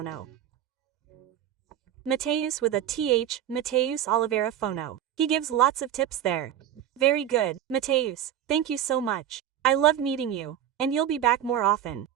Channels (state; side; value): quieter; left; 10.5 dB